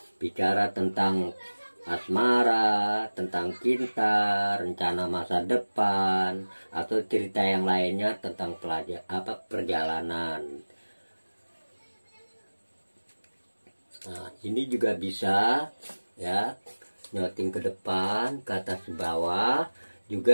bicara tentang asmara, tentang cinta, rencana masa depan, atau cerita yang lainnya tentang perjalanan. Nah, ini juga bisa ya, nyoting ke depan, ke atas ke bawah,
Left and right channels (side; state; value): both; inverted; correlation -1.00